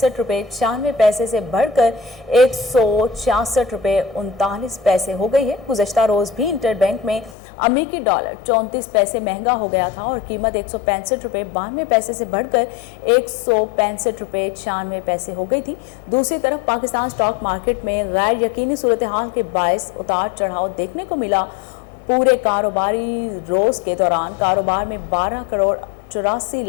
रुपए 96 पैसे से बढ़कर 166 रुपए 39 पैसे हो गई है। गुज़श्ता रोज भी इंटर बैंक में अमेरिकी डॉलर 34 पैसे महंगा हो गया था और कीमत 165 रुपए 92 पैसे से बढ़कर 165 रुपए 96 पैसे हो गई थी। दूसरी तरफ पाकिस्तान स्टॉक मार्केट में गैर यकीनी सूरत हाल के बायस उतार चढ़ाव देखने को मिला। पूरे कारोबारी रोज के दौरान कारोबार में 12 करोड़ 84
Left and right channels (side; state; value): right; drops out; at 7.4 s